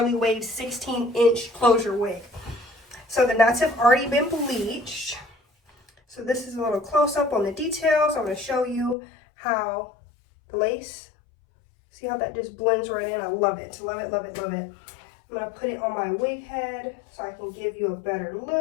wave 16-inch closure wig. So the knots have already been bleached. So this is a little close-up on the details. I'm going to show you how the lace, see how that just blends right in. I love it. Love it, love it, love it. I'm going to put it on my wig head so I can give you a better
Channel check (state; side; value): drops out; right; at 9.0 s